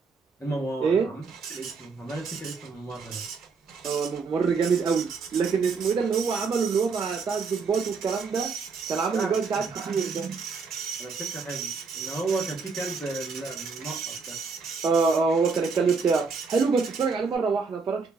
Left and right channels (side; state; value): left; quieter; 4.9 dB